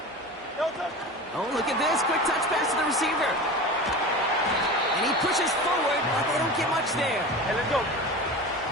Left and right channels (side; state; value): both; normal; correlation 0.31